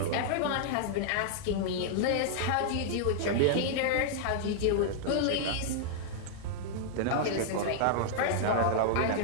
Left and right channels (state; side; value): different; both; correlation -0.01